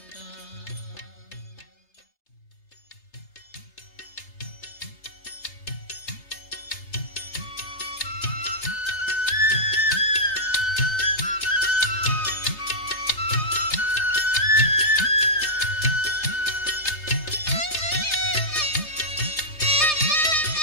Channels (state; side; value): late; right; 3.3 ms